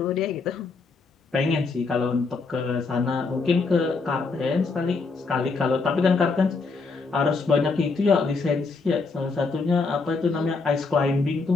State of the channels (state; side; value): quieter; right; 4.2 dB